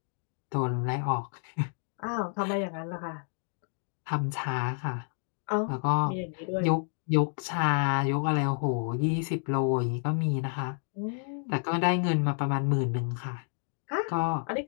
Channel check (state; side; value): silent; right; 58 dB below the other